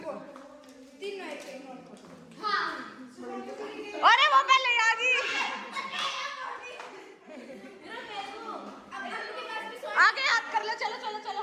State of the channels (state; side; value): identical; both; correlation 1.00